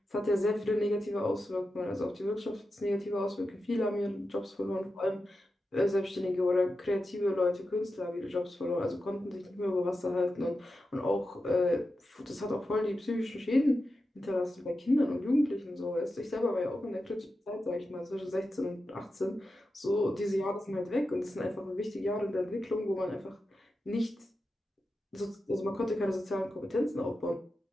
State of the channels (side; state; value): both; normal; correlation 0.90